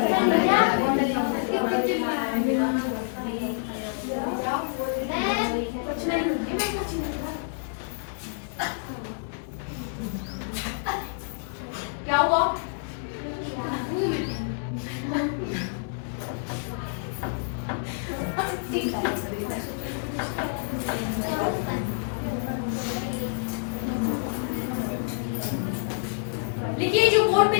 क्या हुआ? लिखिए, जो बोर्ड पे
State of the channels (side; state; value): right; silent; digital silence